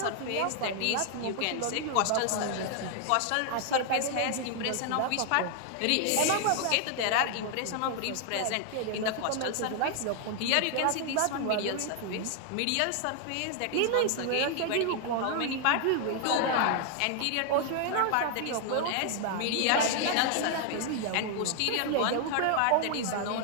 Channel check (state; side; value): different; both; correlation 0.00